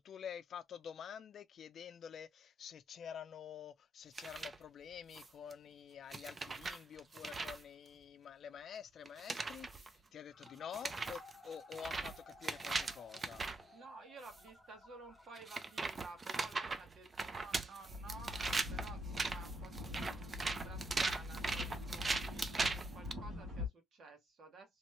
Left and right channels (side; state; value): both; normal; correlation 0.80